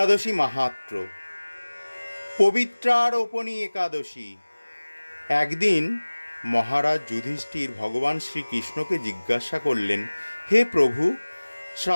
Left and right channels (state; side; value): inverted; both; correlation -1.00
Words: মাহাত্ম্য। পবিত্রারোপণী একাদশী। একদিন মহারাজ যুধিষ্ঠির ভগবান শ্রীকৃষ্ণকে জিজ্ঞাসা করলেন, হে প্রভু,